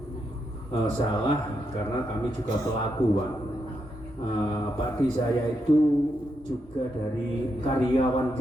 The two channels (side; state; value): both; normal; correlation 0.82